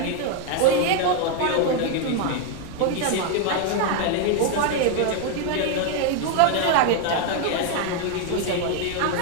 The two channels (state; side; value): different; both; correlation 0.01